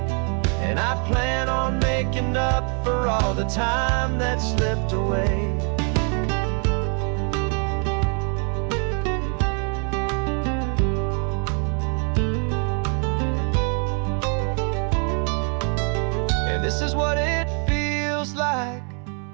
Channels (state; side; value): quieter; left; 39.4 dB